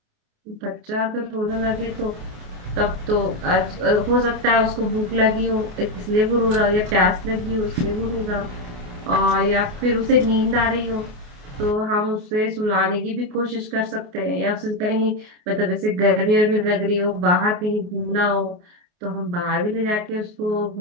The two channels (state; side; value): late; left; 28 ms